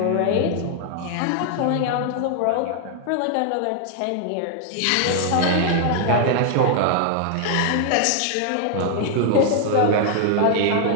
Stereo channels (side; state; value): both; different; correlation 0.00